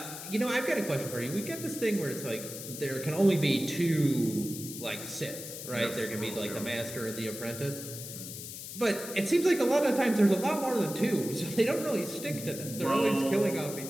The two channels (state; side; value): noise; left; hiss, 10 dB below the sound